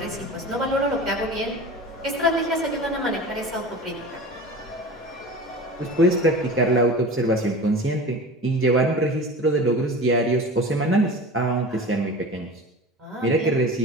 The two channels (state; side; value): normal; both; correlation 0.34